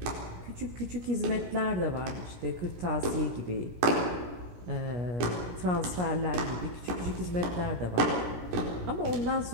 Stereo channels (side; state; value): left; late; 17 ms